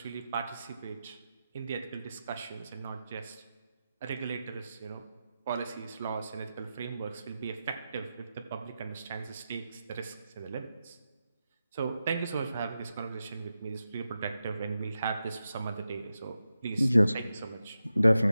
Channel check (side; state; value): both; inverted; correlation -0.90